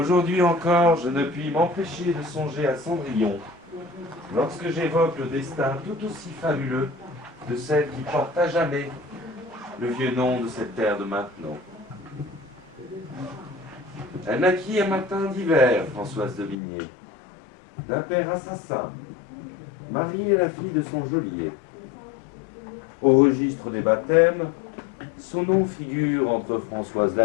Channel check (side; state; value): right; drops out; at 16.6 s